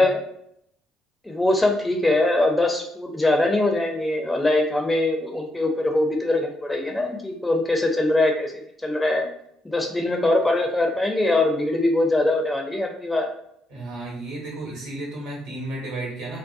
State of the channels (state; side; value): normal; both; correlation 0.82